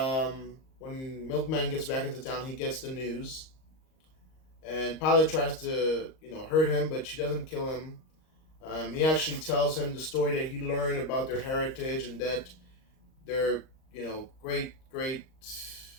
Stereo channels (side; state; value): right; late; 38 ms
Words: when Milkman gets back into town, he gets the news. And Pilot tries to, hurt him, but she doesn't kill him. He actually tells him the story that he learned about their heritage and that their, they're